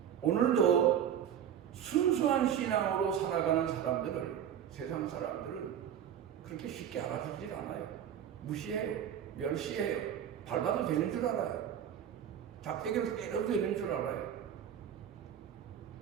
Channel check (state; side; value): quieter; left; 9.4 dB